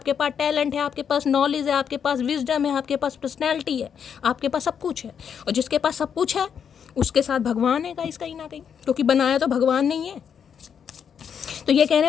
पास टैलेंट है, आपके पास नॉलेज है, आपके पास विजडम है, आपके पास पर्सनैलिटी है, आपके पास सब कुछ है। और जिसके पास सब कुछ है उसके साथ भगवान है गाइस कहीं ना कहीं, क्योंकि बनाया तो भगवान नहीं है। तो ये कह रहे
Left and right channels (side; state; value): right; quieter; 7.6 dB